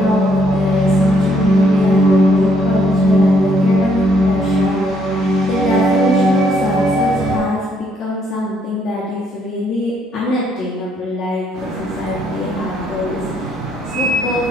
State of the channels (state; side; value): normal; both; correlation 0.70